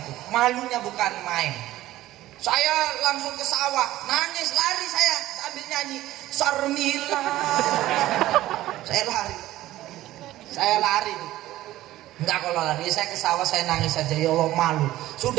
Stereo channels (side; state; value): left; quieter; 15.3 dB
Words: malunya bukan main. Saya langsung ke sawah, nangis, lari saya sambil nyanyi Sarmila. Saya lari. Enggak, kalau lari saya ke sawah saya nangis saja, ya Allah malu.